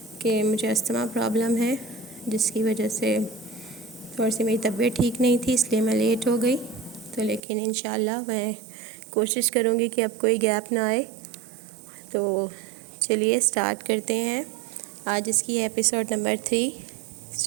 کہ مجھے استھما پرابلم ہے، جس کی وجہ سے تھوڑی سی میری طبیعت ٹھیک نہیں تھی، اس لیے میں لیٹ ہو گئی۔ تو لیکن انشاءاللہ میں کوشش کروں گی کہ اب کوئی گیپ نہ آئے۔ تو چلیے سٹارٹ کرتے ہیں۔ آج اس کی ایپیسوڈ نمبر 3۔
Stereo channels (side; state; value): left; drops out; at 7.4 s